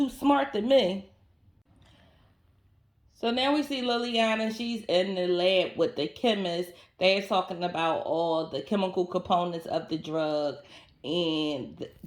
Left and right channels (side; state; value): both; identical; correlation 1.00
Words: smart to me. So now we see Liliana. She's in the lab with the chemist. They're talking about all the chemical components of the drug, and